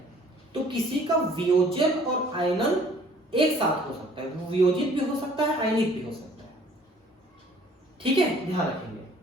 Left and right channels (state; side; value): normal; both; correlation 0.56